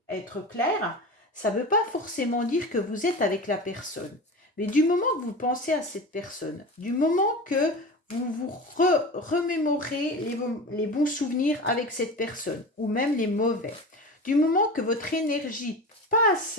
être claire, ça ne veut pas forcément dire que vous êtes avec la personne. Mais du moment que vous pensez à cette personne, du moment que vous vous remémorez les bons souvenirs avec cette personne, ou même les mauvais, du moment que votre énergie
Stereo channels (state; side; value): normal; both; correlation 0.30